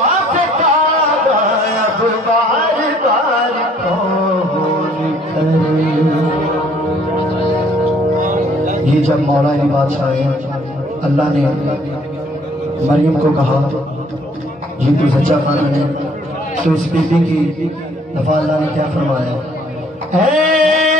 काबा अब बार बार कौन करे। ये जब मौला अली बादशाह है, अल्लाह ने मरियम को कहा ये तो सच्चा खाना है, तो उस बीबी की दफा अल्लाह ने क्या फरमाया, ऐ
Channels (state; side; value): normal; both; correlation 0.61